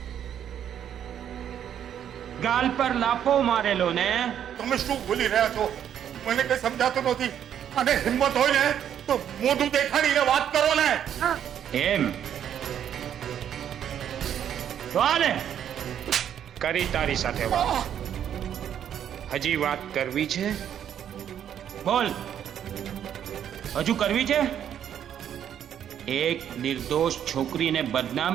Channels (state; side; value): quieter; left; 9.6 dB